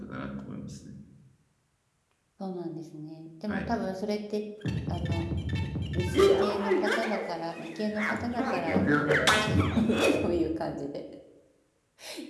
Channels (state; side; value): identical; both; correlation 1.00